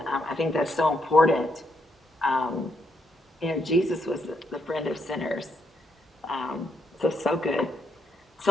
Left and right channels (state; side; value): normal; both; correlation 0.78